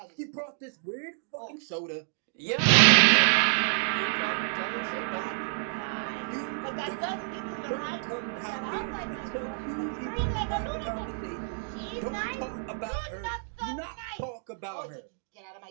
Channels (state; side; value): silent; left; digital silence